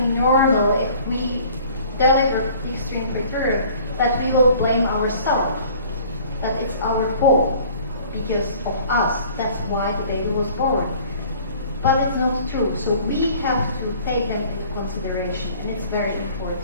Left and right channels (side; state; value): both; inverted; correlation -0.51